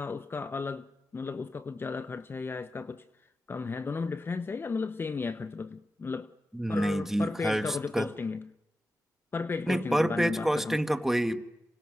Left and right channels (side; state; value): both; normal; correlation 0.92